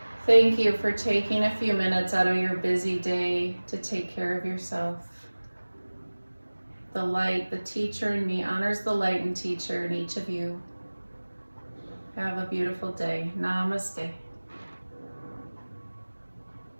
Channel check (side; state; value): both; inverted; correlation -1.00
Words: Thank you for taking a few minutes out of your busy day to take care of yourself. The light, the teacher in me honors the light and teacher in each of you. Have a beautiful day. Namaste.